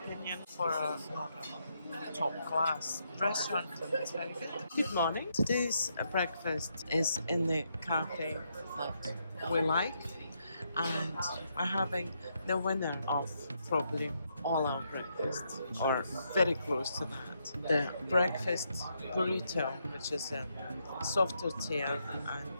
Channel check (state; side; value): inverted; both; correlation -0.78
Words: for a top class restaurant, it's very good. Good morning. Today's breakfast is in the cafe that we like, and we're having the winner of probably all our breakfast, or very close to that. The breakfast burrito, which is a soft tortilla